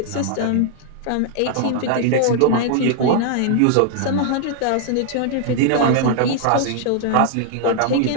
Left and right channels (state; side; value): different; both; correlation -0.01